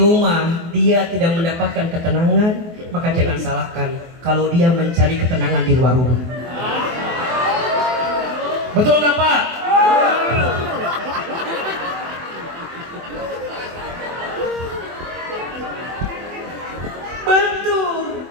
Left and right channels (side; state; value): left; late; 24 ms